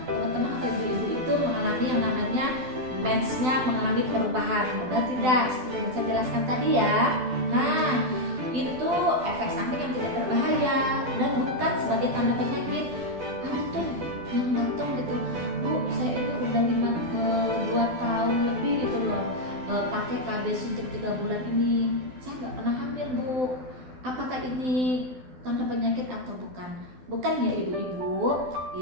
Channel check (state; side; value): late; left; 12 ms